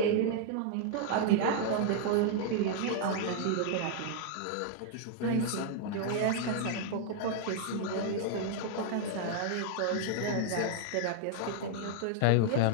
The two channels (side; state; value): both; different; correlation -0.01